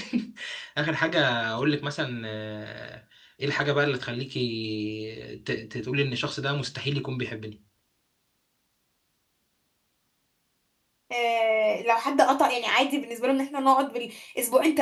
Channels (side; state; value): both; identical; correlation 1.00